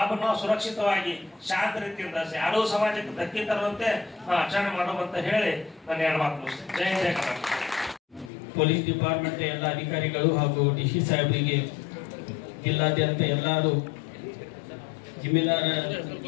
ನಾವು ಸುರಕ್ಷಿತವಾಗಿ ಶಾಂತ ರೀತಿಯಿಂದ ಯಾರೂ ಸಮಾಜಕ್ಕೆ ಧಕ್ಕೆ ತರುವಂತೆ ಆಚರಣೆ ಮಾಡೋದಂತ ಹೇಳಿ ನಾನು 2 ಮಾತು ಮುಗಿಸ್ತೇನೆ. ಜೈ ಜಯ ಕರ್ನಾಟಕ. ಪೊಲೀಸ್ ಡಿಪಾರ್ಟ್ಮೆಂಟ್ ಎಲ್ಲ ಅಧಿಕಾರಿಗಳು ಹಾಗೂ DC ಸಾಹೇಬರಿಗೆ, ಜಿಲ್ಲಾದ್ಯಂತ ಎಲ್ಲರೂ ಜಿಮ್ಮೆದಾರ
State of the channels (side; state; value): right; drops out; at 8.3 s